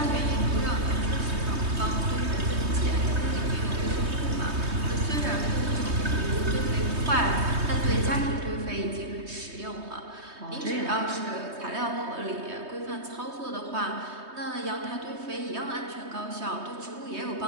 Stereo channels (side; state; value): left; late; 3.2 ms